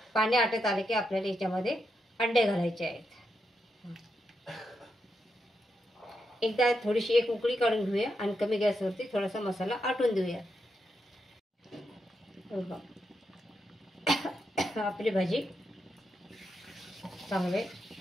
पाणी आटत आलं की आपल्याला याच्यामध्ये अंडे घालायचे आहेत. एकदा थोडीशी एक उकळी काढून घेऊया आणि कमी गॅसवरती थोडासा मसाला आटून देऊया. आपली भाजी चांगले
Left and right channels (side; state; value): both; normal; correlation 0.84